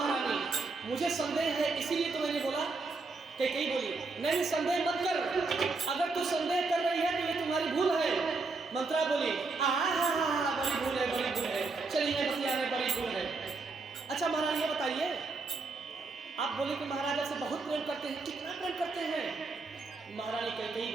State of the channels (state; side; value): quieter; left; 3.9 dB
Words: मुझे संदेह है, इसीलिए तो मैंने बोला। कैकेयी बोली, नहीं संदेह मत कर, अगर तू संदेह कर रही है तो ये तुम्हारी भूल है। मंथरा बोली, बड़ी भूल है, बड़ी भूल है, चलिए बतिया में बड़ी भूल है। अच्छा महारानी ये बताइए, आप बोले कि महाराजा से बहुत प्रेम करते हैं, कितना प्रेम करते हैं? महारानी कैकेयी